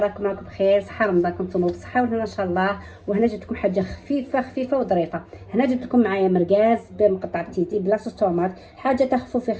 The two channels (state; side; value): identical; both; correlation 1.00